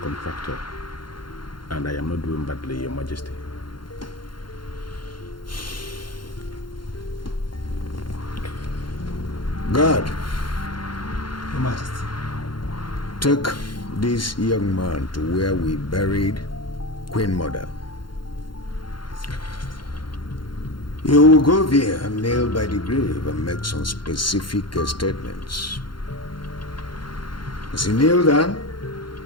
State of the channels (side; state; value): right; late; 0.72 ms